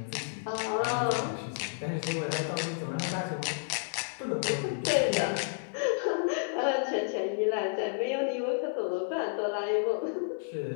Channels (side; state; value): right; silent; digital silence